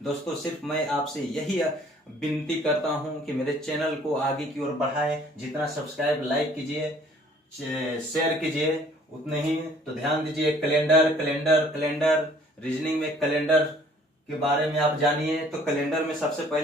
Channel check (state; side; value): normal; both; correlation 0.57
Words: दोस्तों, सिर्फ मैं आपसे यही विनती करता हूं कि मेरे चैनल को आगे की ओर बढ़ाएं। जितना सब्सक्राइब, लाइक कीजिए, शेयर कीजिए, उतने ही। तो ध्यान दीजिए, कैलेंडर रीजनिंग में कैलेंडर के बारे में आप जानिए। तो कैलेंडर में सबसे